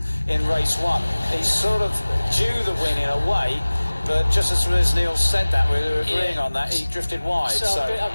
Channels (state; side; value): inverted; both; correlation -1.00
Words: in race 1. He's sort of due the win in a way, but just as Neil said that, we were agreeing on that, he drifted wide. So